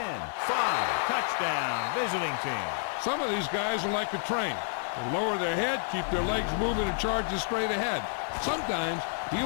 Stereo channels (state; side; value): silent; right; digital silence